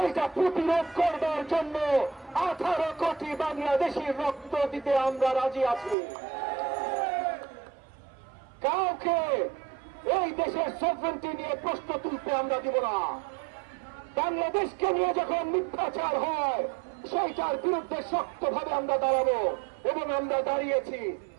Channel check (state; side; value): drops out; left; at 6.0 s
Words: প্রতিরোধ করবার জন্য 18 কোটি বাংলাদেশির রক্ত দিতে আমরা রাজি আছি। কাউকে এই দেশের সভরেন্টি নিয়ে প্রশ্ন তুলতে আমরা দিব না। বাংলাদেশকে নিয়ে যখন মিথ্যাচার হয়, সেইটার বিরুদ্ধে শক্তভাবে আমরা দাঁড়াবো এবং আমরা দাঁড়িয়েছি।